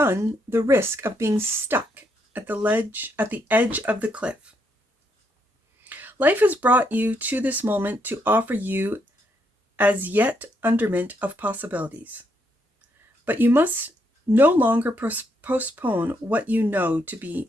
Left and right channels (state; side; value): normal; both; correlation 0.76